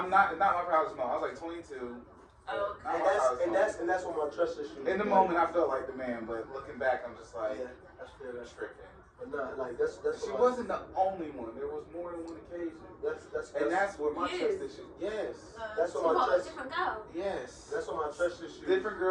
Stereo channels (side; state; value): both; identical; correlation 1.00